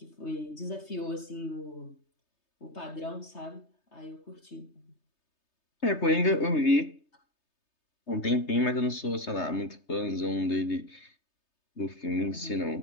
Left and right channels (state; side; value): late; right; 3.3 ms